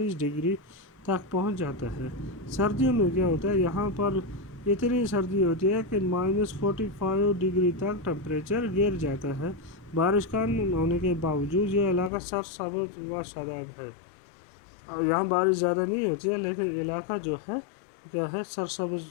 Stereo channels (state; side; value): drops out; right; at 12.1 s